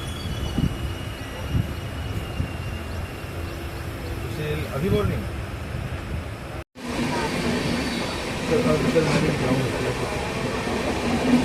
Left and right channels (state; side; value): identical; both; correlation 1.00